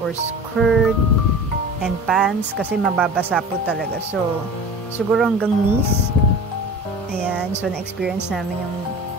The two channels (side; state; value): both; normal; correlation 0.37